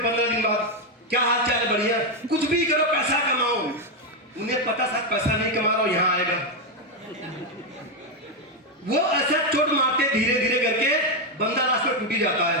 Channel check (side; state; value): both; normal; correlation 0.05